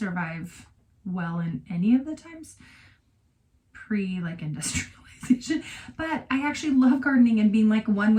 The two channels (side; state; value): both; identical; correlation 1.00